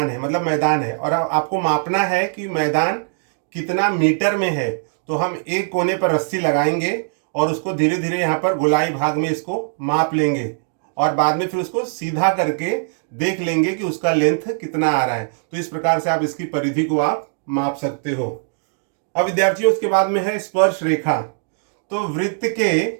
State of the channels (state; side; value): silent; left; digital silence